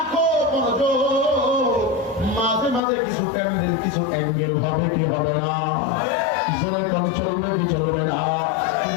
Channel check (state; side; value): drops out; right; at 2.8 s